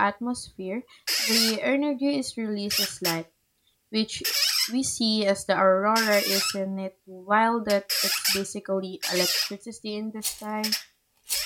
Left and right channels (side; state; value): both; identical; correlation 1.00